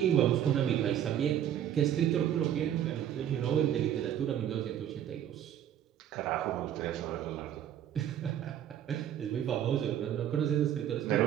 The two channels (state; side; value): quieter; left; 10.4 dB